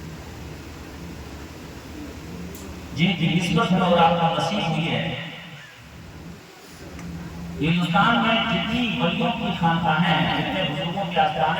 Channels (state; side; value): identical; both; correlation 1.00